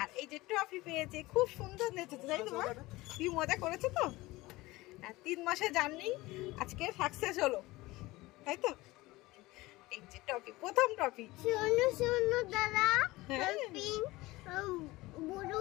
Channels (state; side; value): quieter; right; 19.9 dB